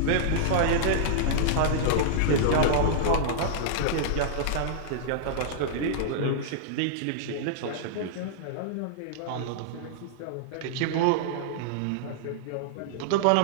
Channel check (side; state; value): both; different; correlation -0.02